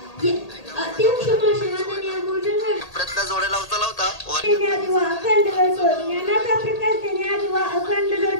जोड्या लावता लावता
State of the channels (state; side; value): late; right; 1.8 ms